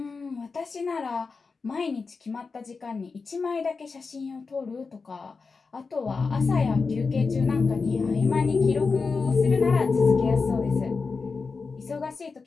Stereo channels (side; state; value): right; quieter; 4.6 dB